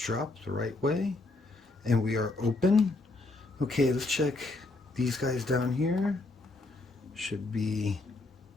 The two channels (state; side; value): quieter; right; 3.1 dB